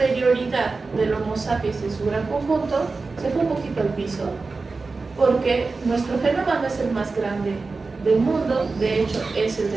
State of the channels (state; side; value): quieter; left; 4.0 dB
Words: del Homo sapiens en su gran conjunto se fue un poquito al piso, porque nuestro genoma no es el más grande del mundo, de hecho es el